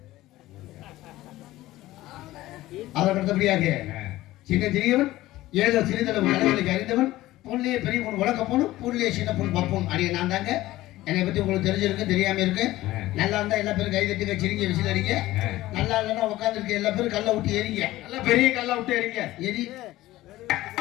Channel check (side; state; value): right; quieter; 16.6 dB